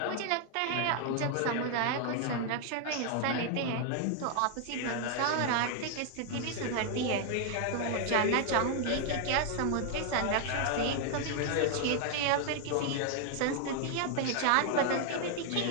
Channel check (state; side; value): different; both; correlation 0.00